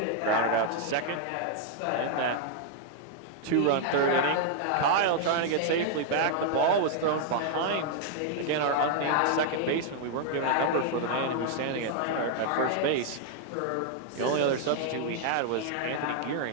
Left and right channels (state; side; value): different; both; correlation 0.00